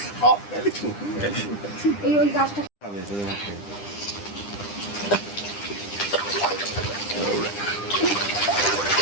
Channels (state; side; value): late; right; 9.9 ms